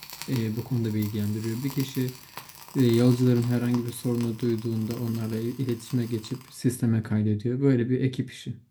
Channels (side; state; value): both; identical; correlation 1.00